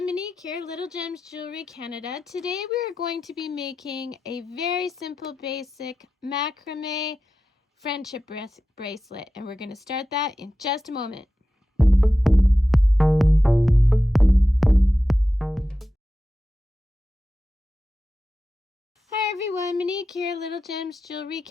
Monique here, Little Gems Jewelry Canada. Today we are going to be making a very simple basic macrame friendship bracelet, and we're going to start that in just a moment. Hi everyone, Monique here, Little Gems Jewelry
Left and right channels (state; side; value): normal; both; correlation 0.93